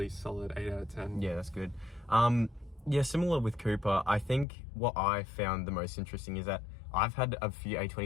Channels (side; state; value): right; drops out; at 4.5 s